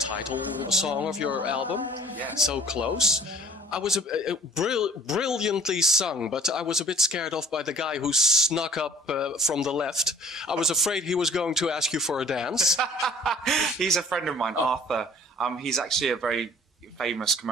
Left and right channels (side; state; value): both; normal; correlation 0.50